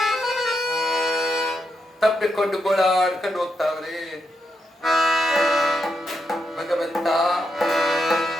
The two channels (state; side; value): normal; both; correlation 0.82